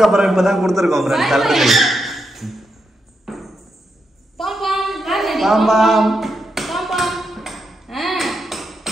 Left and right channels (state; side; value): normal; both; correlation 0.84